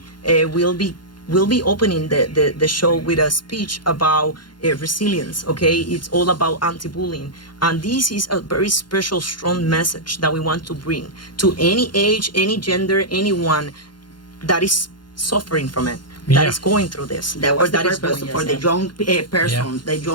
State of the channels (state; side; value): late; right; 0.71 ms